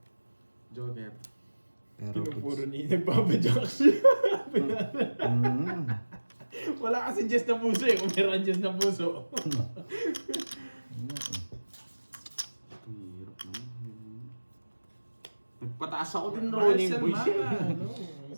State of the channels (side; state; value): both; inverted; correlation -1.00